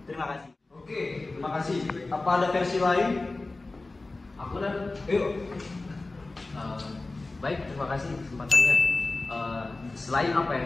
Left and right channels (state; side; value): quieter; right; 3.3 dB